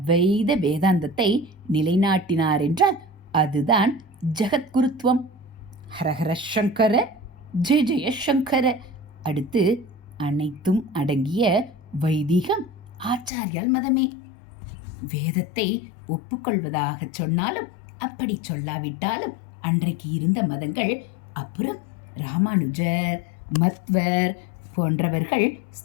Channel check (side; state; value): right; drops out; at 13.3 s